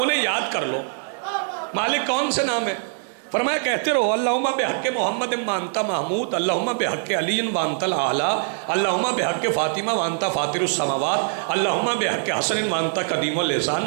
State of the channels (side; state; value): left; silent; digital silence